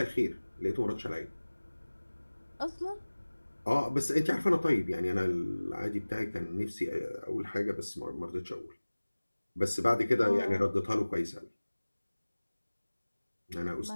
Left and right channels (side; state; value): both; inverted; correlation -1.00